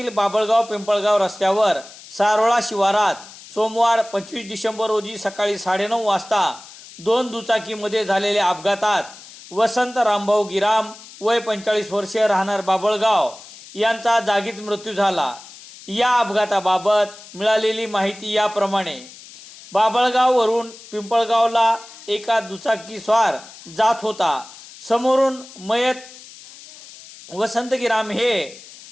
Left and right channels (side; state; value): left; noise; hiss, 18 dB below the sound